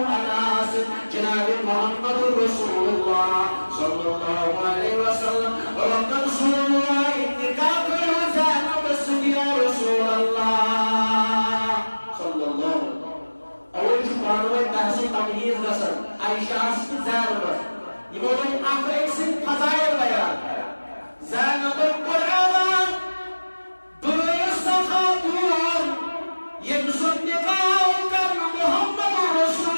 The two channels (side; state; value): both; inverted; correlation -1.00